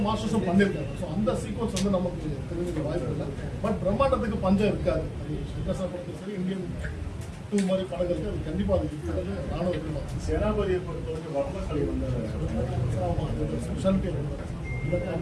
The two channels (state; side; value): identical; both; correlation 1.00